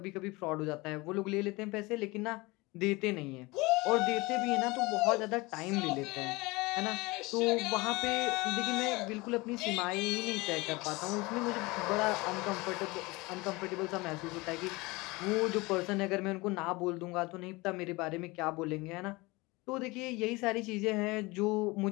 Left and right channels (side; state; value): right; quieter; 23.3 dB